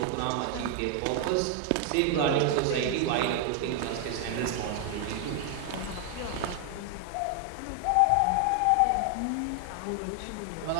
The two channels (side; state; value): both; different; correlation 0.00